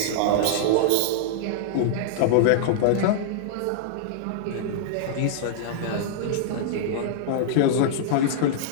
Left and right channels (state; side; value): different; both; correlation -0.02